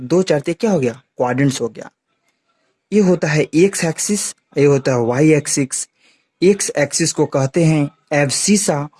4 तो क्या हो गया? क्वाड्रेंट्स हो गया। ये होता है एक्स एक्सिस, ये होता है वाई एक्सिस। एक्स एक्सिस को कहते हैं एब्सिसा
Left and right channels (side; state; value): both; identical; correlation 1.00